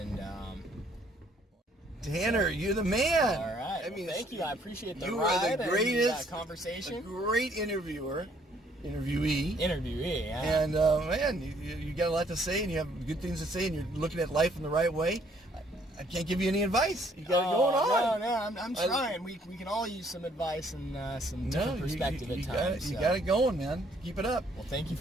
Tanner, you're the man. All right. I mean, thank you. I appreciate the you ride are the greatest and conversation. A great interviewee. Yeah. And man, you got a lot to say, and you have good things to say, and you're looking at life in the right way. I can't give you any advice. You got it going on. No, I'm trying. We can all use some advice and some different perspective at times. You got it going, man. Keep it up. Well, thank you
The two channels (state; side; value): normal; both; correlation 0.64